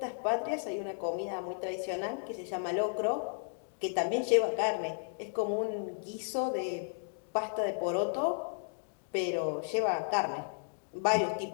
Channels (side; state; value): right; silent; digital silence